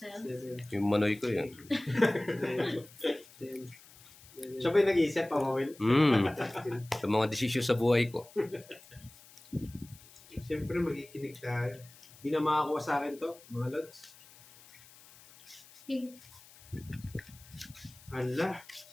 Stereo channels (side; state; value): left; noise; hiss, 23 dB below the sound